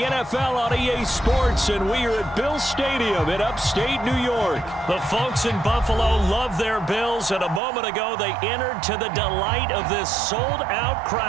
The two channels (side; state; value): left; drops out; at 7.6 s